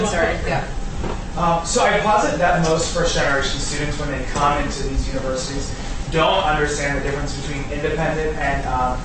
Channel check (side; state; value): both; identical; correlation 1.00